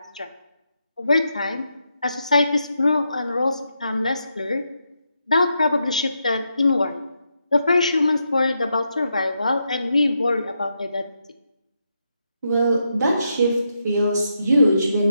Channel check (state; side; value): inverted; both; correlation -0.82